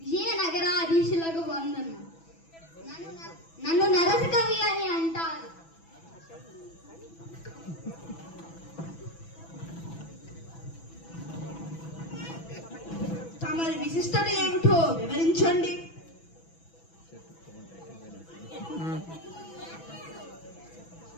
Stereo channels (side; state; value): right; late; 6.1 ms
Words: విజయనగరాధీశులకు వందనం. నన్ను నరసకవి అని అంటారు. తమరి విశిష్టత ఏమిటో వివరించండి.